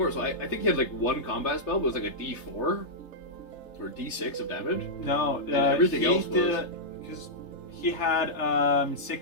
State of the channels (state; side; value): late; right; 3.3 ms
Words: so I think he had like one combat spell, but it was like a D4 or D6 of damage. No, everything else was... Because he had